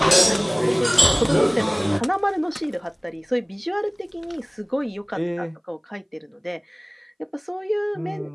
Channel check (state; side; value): identical; both; correlation 1.00